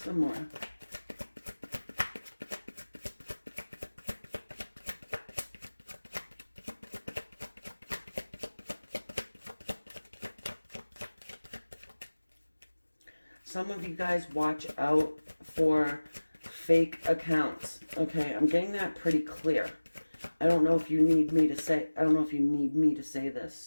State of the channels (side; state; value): both; inverted; correlation -1.00